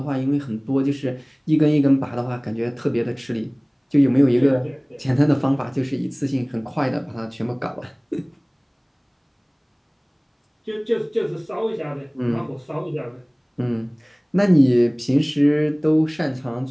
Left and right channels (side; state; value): both; identical; correlation 1.00